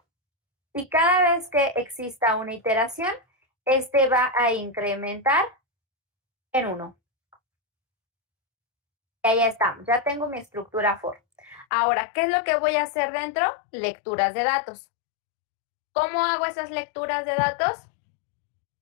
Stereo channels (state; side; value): drops out; right; at 11.7 s